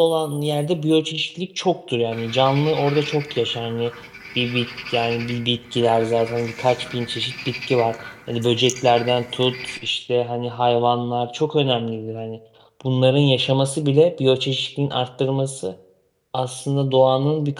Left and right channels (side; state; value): both; identical; correlation 1.00